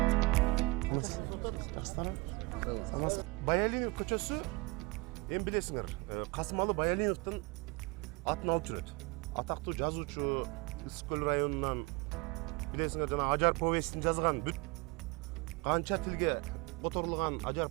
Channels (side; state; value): left; quieter; 25.7 dB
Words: Баялинов көчөсү, эми билесиңер, Касымалы Баялиновдун атын алып жүрөт. Атактуу жазуучу, Ысык көл районунан, билесиңер, жана Ажар повестин жазган, бүт канча тилге которулган Ажар